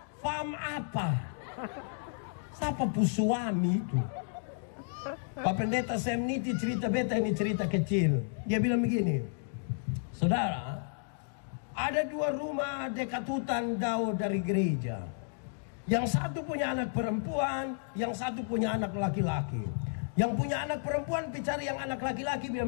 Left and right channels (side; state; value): right; silent; digital silence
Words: fam apa? Siapa pu suami itu? Pak Pendeta Semniti cerita beta ini cerita kecil. Dia bilang begini, saudara, ada 2 rumah dekat hutan jauh dari gereja. Yang satu punya anak perempuan, yang satu punya anak laki-laki. Yang punya anak perempuan bicara yang anak laki-laki